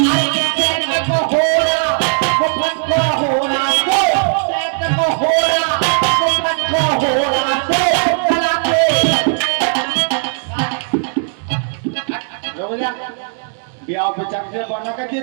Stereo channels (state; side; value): silent; left; digital silence